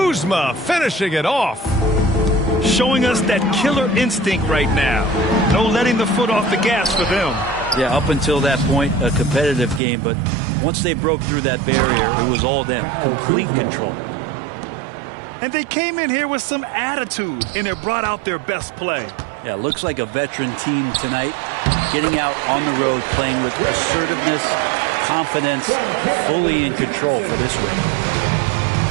finishing it off. Showing us that killer instinct right now. No letting the foot off the gas for them. Yeah, up until that point, a competitive game, but once they broke through that barrier, it was all them. Complete control. And they came in here with some attitude, and it brought out their best play. Yeah, looks like a veteran team tonight, getting out on the road, playing with assertiveness, confidence, fully in control for this win.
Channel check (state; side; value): drops out; left; at 9.8 s